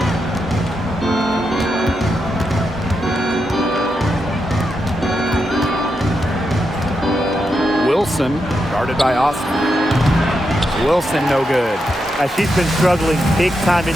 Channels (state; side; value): normal; both; correlation 0.85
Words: Wilson, guarded by Austin. Wilson, no good. She's been struggling big time in